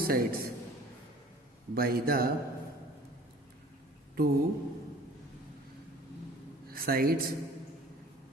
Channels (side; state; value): both; normal; correlation 0.47